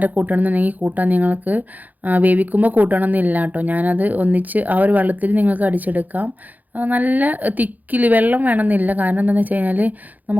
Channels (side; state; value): left; late; 0.081 ms